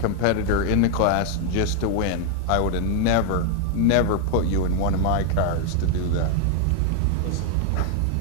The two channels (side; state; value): both; different; correlation 0.01